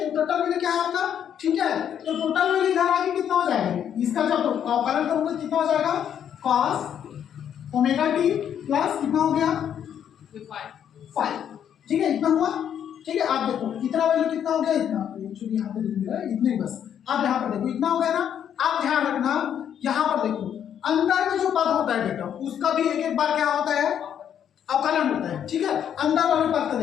टोटल वैल्यू क्या है आपका? थीटा है। तो टोटल वैल्यू इधर आके कितना हो जाएगा? इसका जब अवकलन करूंगा कितना हो जाएगा? cos ओमेगा टी प्लस कितना हो गया? 5। ठीक है, इतना हुआ। ठीक है, आप देखो इतना वैल्यू कितना हो गया? इतना एक्चुअली यहाँ पे लिख दिया है, इतने ही बस। अब यहाँ पर देखो इतना हो गया ना। आप ध्यान रखना, यहाँ पर देखो अंदर में जो पद होता है बेटा, उसका भी एक एक बार क्या होता है? अवकलन होता है। ठीक है, अंदर वाले पद का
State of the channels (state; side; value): quieter; right; 9.1 dB